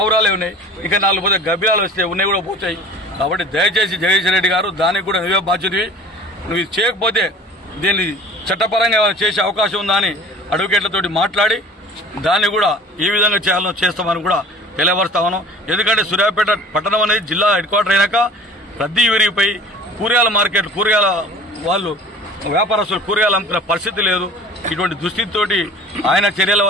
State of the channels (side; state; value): both; normal; correlation 0.44